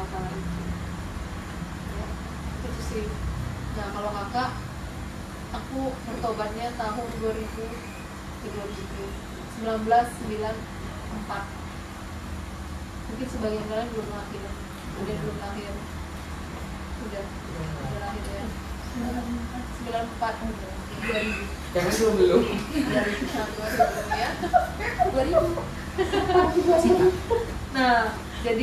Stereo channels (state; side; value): identical; both; correlation 1.00